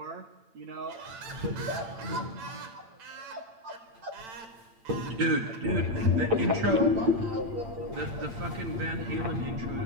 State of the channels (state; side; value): late; left; 9.0 ms